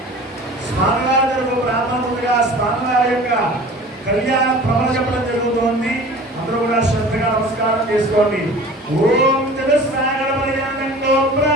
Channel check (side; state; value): both; normal; correlation 0.42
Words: స్వామివారి బ్రాహ్మణుడిగా స్వామివారి యొక్క కళ్యాణ ప్రవణ చెప్పడం జరుగుతోంది. అందరూ కూడా శ్రద్ధగా నమస్కారం చేసుకోండి. ఓం జగత్సాగర పర్యంతో